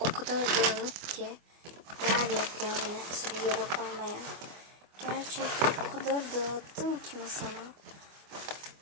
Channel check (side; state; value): left; late; 25 ms